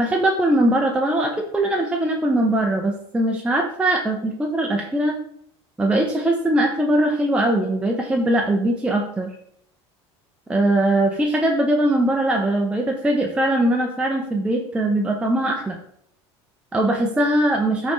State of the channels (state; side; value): normal; both; correlation 0.69